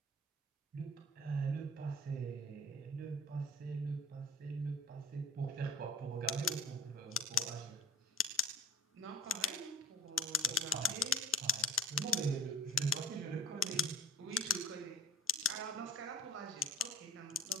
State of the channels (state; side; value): normal; both; correlation 0.44